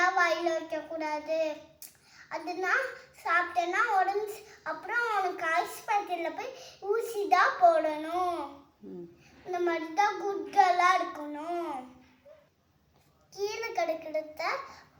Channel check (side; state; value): both; identical; correlation 1.00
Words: வாயில வைக்க கூடாது. அதுனா சாப்பிட்டேன்னா உடம்பு அப்புறம் உனக்கு ஆஸ்பத்திரியில் போய் ஊசி தான் போடணும். இந்த மாதிரி தான் குட்களாக இருக்கணும். கீழே கிடக்கிறத